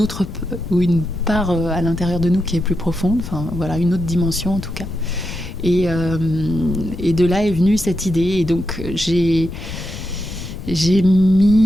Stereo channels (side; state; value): left; noise; rumble, 10 dB below the sound